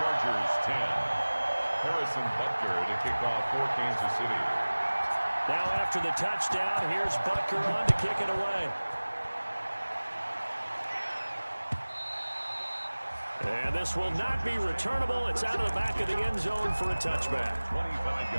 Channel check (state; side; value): inverted; both; correlation -1.00